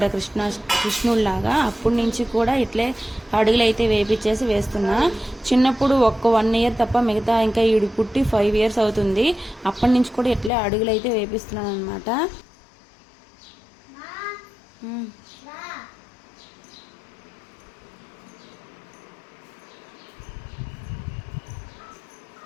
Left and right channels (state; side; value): drops out; right; at 10.5 s